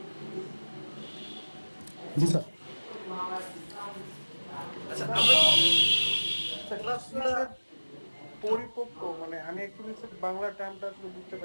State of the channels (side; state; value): both; inverted; correlation -1.00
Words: জি স্যার। আচ্ছা, আমরা পরিপক্ক মানে আমি অ্যাকচুয়ালি বাংলা টার্মটা আসলে বুঝতে